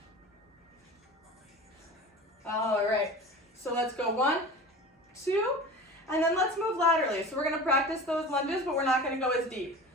All right, so let's go 1, 2, and then let's move laterally. So we're gonna practice those lunges, but we're not gonna go as deep.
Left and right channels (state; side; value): normal; both; correlation 0.35